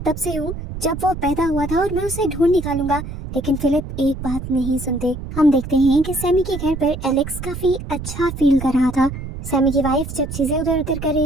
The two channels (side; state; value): right; noise; rumble, 8 dB below the sound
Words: तब से हूँ जब वो पैदा हुआ था और मैं उसे ढूंढ निकालूंगा। लेकिन फिलिप एक बात नहीं सुनते। हम देखते हैं कि सैमी के घर पर एलेक्स काफी अच्छा फील कर रहा था। सैमी की वाइफ जब चीजें उधर उधर कर